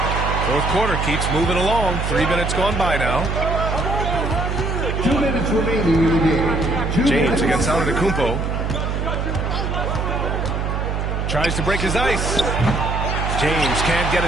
Fourth quarter keeps moving along. 3 minutes gone by now. 2 minutes remaining in the game. James against Antetokounmpo. Tries to break his ice. James can't get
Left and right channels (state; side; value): noise; right; hum, 1 dB below the sound